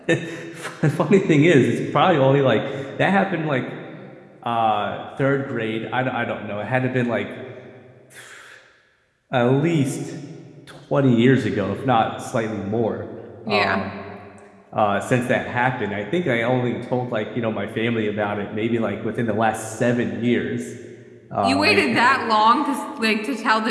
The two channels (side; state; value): both; identical; correlation 1.00